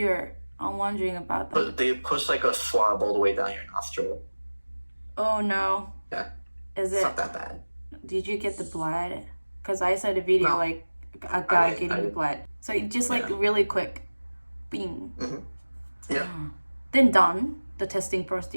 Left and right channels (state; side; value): inverted; both; correlation -1.00